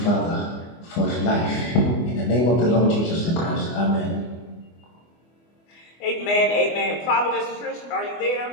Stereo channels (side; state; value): right; late; 24 ms